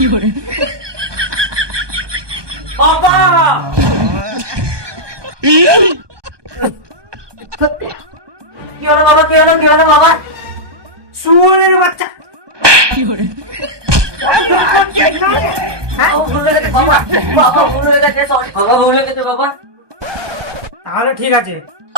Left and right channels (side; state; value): left; late; 1.2 ms